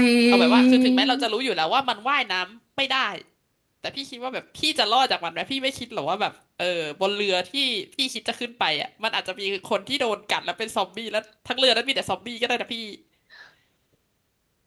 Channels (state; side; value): identical; both; correlation 1.00